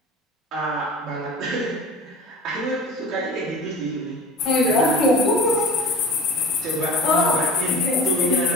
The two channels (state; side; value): normal; both; correlation 0.38